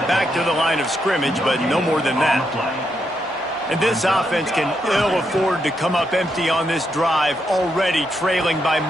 back to the line of scrimmage, but no more than that. And this offense can ill afford to come up empty on this drive, already trailing by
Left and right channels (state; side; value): normal; both; correlation 0.80